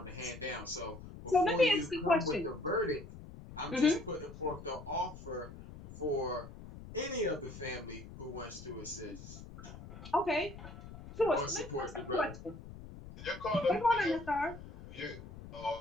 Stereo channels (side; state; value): left; noise; rumble, 14 dB below the sound